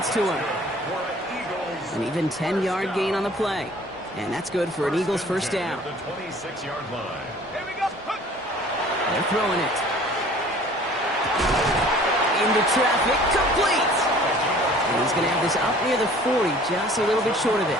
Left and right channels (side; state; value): both; normal; correlation 0.50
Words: to him. An even 10-yard gain on the play. And that's good for an Eagles 1st down. The 26-yard line. They're throwing it. Into traffic, complete! And he's going to have this up near the 40, just a little bit short of